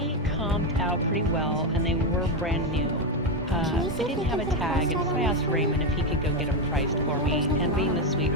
comped out pretty well, and they were brand new. Can you see They if didn't you have a can put a tag, price and tag so on I asked this? Raymond if he could go get them priced for me, and being the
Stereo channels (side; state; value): both; normal; correlation 0.08